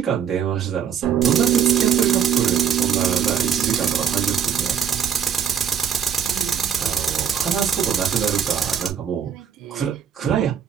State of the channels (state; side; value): quieter; left; 8.1 dB